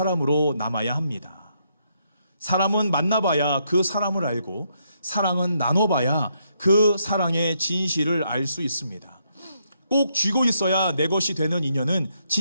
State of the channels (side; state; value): both; inverted; correlation -0.76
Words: 남아야 합니다. 사람은 만나봐야 그 사람을 알고 사랑은 나눠봐야 그 사랑의 진실을 알 수 있습니다. 꼭 쥐고 있어야 내 것이 되는 인연은